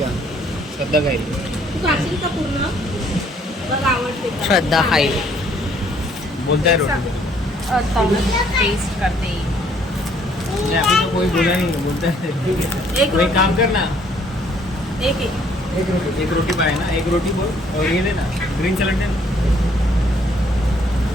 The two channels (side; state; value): both; normal; correlation 0.64